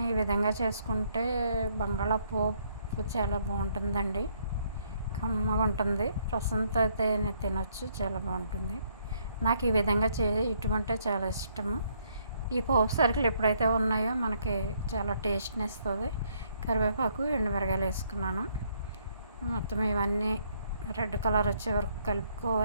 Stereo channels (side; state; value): both; inverted; correlation -0.69